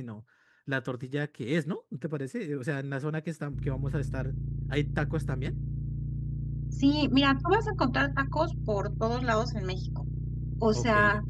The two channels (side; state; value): both; identical; correlation 1.00